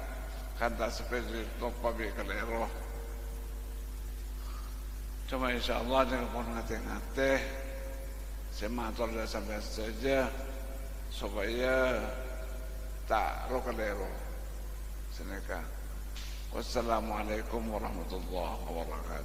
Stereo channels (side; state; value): both; identical; correlation 1.00